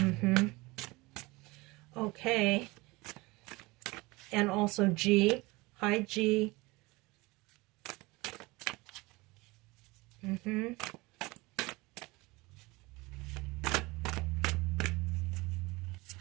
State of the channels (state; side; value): quieter; left; 23.0 dB